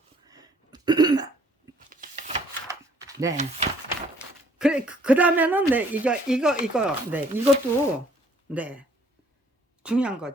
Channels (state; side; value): normal; both; correlation 0.60